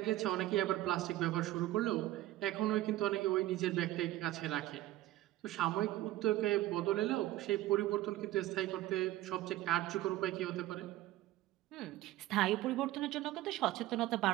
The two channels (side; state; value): left; quieter; 15.6 dB